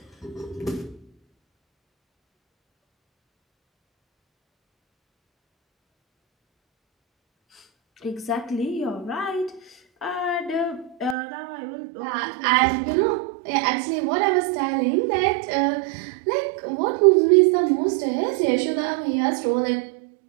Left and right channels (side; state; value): left; drops out; at 11.2 s